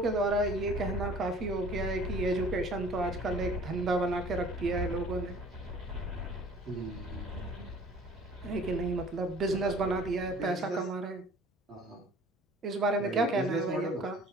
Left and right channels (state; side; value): normal; both; correlation 0.50